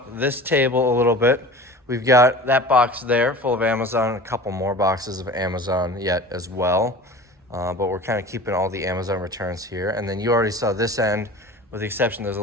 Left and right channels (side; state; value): both; normal; correlation 0.38